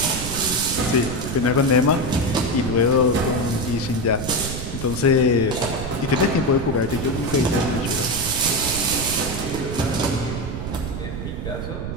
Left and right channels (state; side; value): noise; right; rumble, 6 dB below the sound